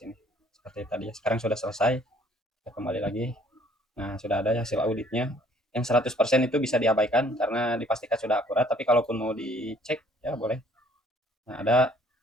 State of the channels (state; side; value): normal; both; correlation 0.59